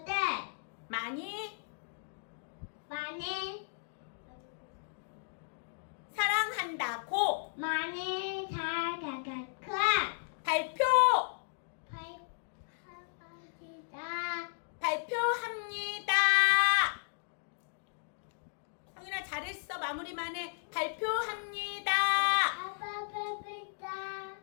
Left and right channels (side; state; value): right; silent; digital silence